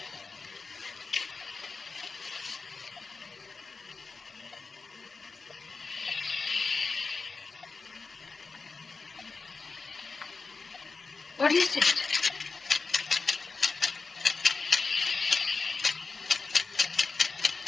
What is it?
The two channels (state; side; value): quieter; right; 4.3 dB